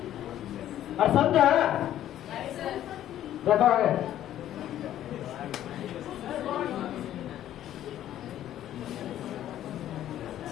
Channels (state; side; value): quieter; right; 12.0 dB